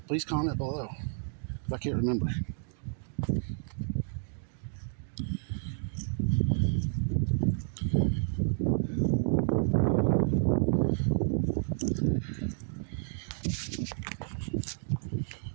please comment below, if I can't remember.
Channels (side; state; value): left; silent; digital silence